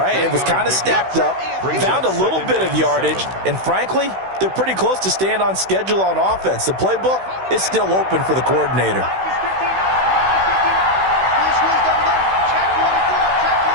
It was kind of stacked up, found a little bit of yardage, and frankly, they're pretty close to staying on schedule on offense. The playbook is still open for the coordinator.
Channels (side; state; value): left; late; 16 ms